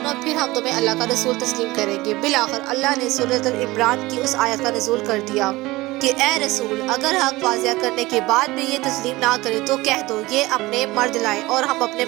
फिर हम तुम्हें अल्लाह का रसूल तस्लीम करेंगे। बिलाखिर अल्लाह ने सूरत अल इमरान की उस आयत का नज़ूल कर दिया कि ए रसूल, अगर हक वाज़िया करने के बाद भी ये तस्लीम ना करे तो कह दो, ये अपने मर्द लाएं और हम अपने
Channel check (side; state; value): left; quieter; 19.9 dB